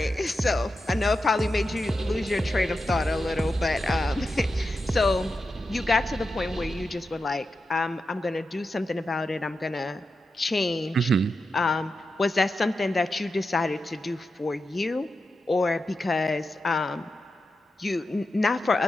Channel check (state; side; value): normal; both; correlation 0.89